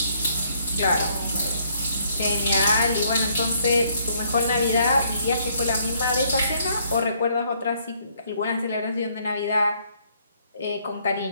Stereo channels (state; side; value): inverted; both; correlation -0.68